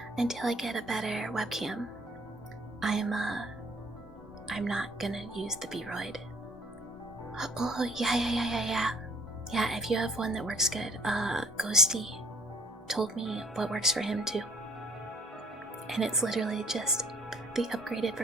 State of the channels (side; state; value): both; normal; correlation 0.57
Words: until I get a better webcam, I'm not gonna use the B-Roid. Oh, yeah, if you have one that works good, Ghosty told me what works for him too. And it's literally just the upgraded